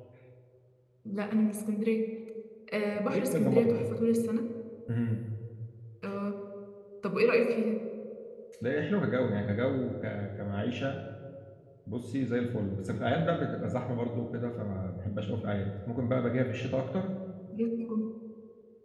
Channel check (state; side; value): identical; both; correlation 1.00